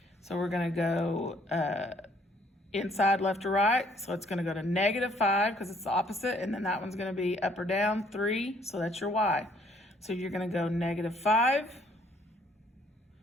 So we're going to go inside left or right. So it's going to go to -5 because it's the opposite. And then that one's going to be up or down 3. So that's your y. So you're going to go -5,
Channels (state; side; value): normal; both; correlation 0.63